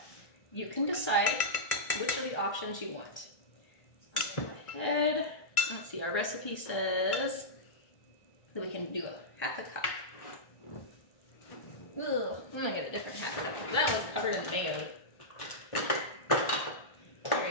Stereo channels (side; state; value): right; late; 1.5 ms